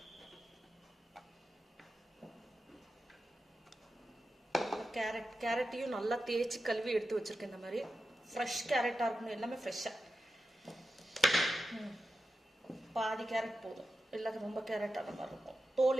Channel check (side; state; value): both; normal; correlation 0.90